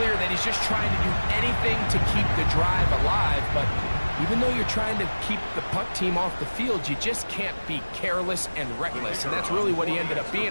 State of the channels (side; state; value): both; inverted; correlation -1.00